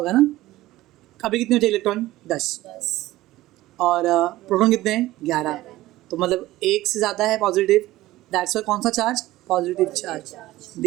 ना। अभी कितने होते हैं इलेक्ट्रॉन? 10। और प्रोटॉन कितने हैं? 11। तो मतलब 1 से ज़्यादा है पॉजिटिव, दैट्स वाई कौन सा charge? Positive charge.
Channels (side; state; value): left; quieter; 16.7 dB